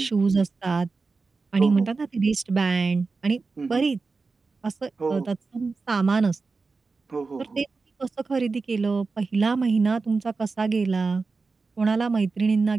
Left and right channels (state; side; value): quieter; left; 4.2 dB